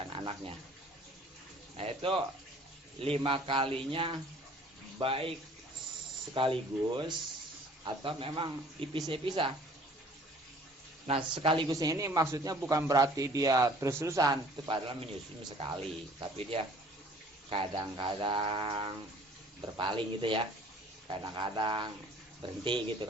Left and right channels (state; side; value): normal; both; correlation 0.53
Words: anaknya. Nah itu 5 kalinya baik sekaligus atau memang dipisah-pisah. Nah sekaligusnya ini maksudnya bukan berarti dia terus-terusan, itu padahal menyusui sekali, tapi dia kadang-kadang berpaling gitu ya, kadang-kadang berhenti gitu